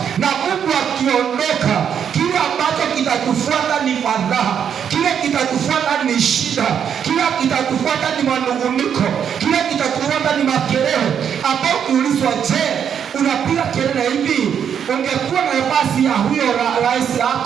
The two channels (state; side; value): quieter; left; 8.1 dB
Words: na Mungu akiondoka, kile ambacho kitatufuata ni fadhaa, kile kitatufuata ni shida, kile kitatufuata ni manunguniko, kile kitatufuata ni makelele, ambao ukiulizwa, je, unapiga kelele hivi, ungekuwa na nafasi ya huyo rais